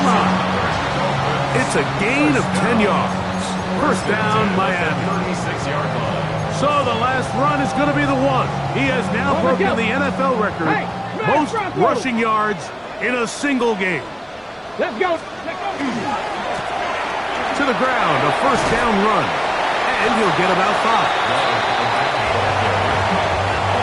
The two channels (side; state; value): both; identical; correlation 1.00